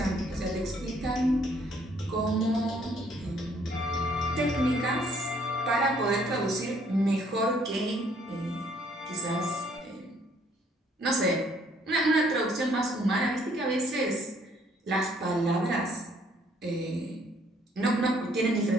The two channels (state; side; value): normal; both; correlation 0.64